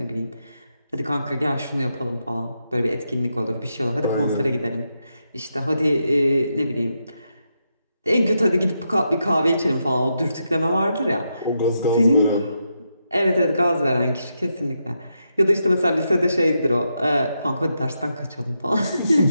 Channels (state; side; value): inverted; both; correlation -0.83